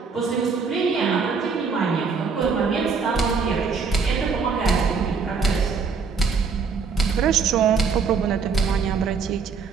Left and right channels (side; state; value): left; quieter; 5.3 dB